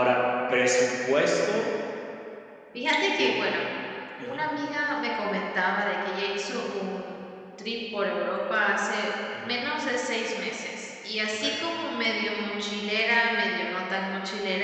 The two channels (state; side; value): identical; both; correlation 1.00